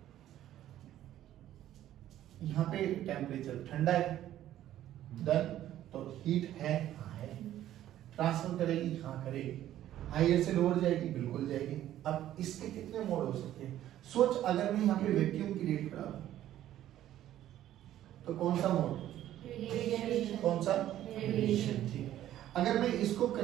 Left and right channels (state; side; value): quieter; left; 12.6 dB